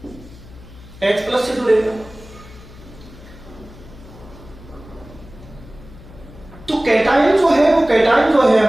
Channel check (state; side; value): noise; left; hum, 19 dB below the sound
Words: H+ से जुड़ेगा। तो कैटायन जो है वो, कैटायन जो है